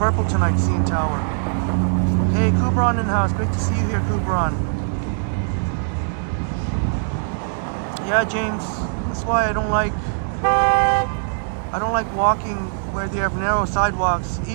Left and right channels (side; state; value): left; silent; digital silence